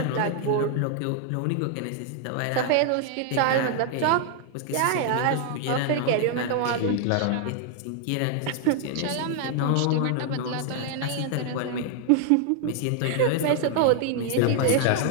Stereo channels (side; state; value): both; different; correlation 0.00